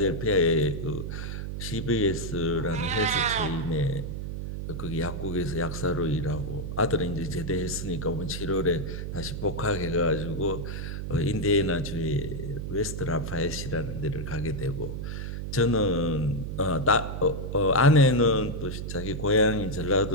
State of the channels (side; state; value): right; noise; hum, 5 dB below the sound